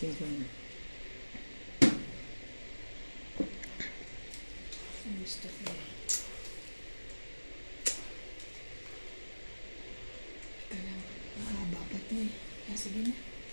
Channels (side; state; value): both; inverted; correlation -1.00